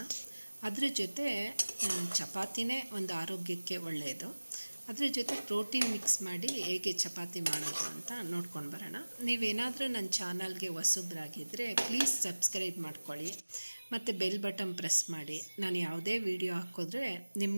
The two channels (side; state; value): both; inverted; correlation -1.00